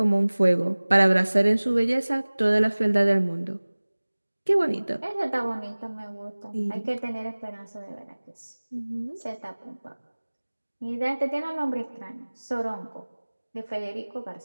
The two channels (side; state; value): both; inverted; correlation -1.00